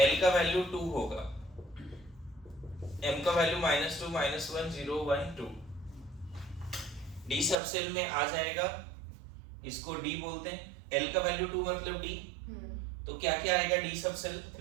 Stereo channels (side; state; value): left; drops out; at 7.6 s